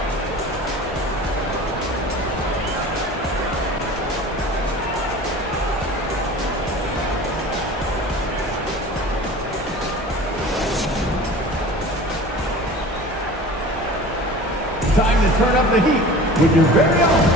Time to turn up the heat with your very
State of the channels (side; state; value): both; normal; correlation 0.40